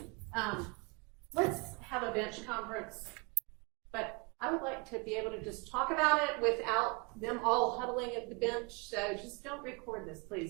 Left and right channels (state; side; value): quieter; left; 30.4 dB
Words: let's have a bench conference, but I would like to be able to just talk about it without them all huddling at the bench. So just don't record this,